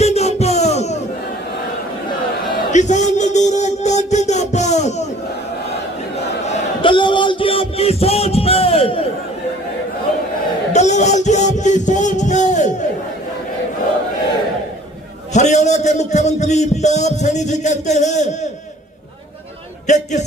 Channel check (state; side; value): normal; both; correlation 0.52